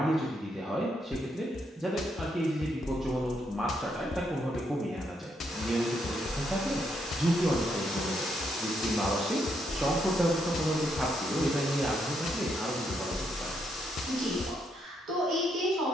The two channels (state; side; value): normal; both; correlation 0.77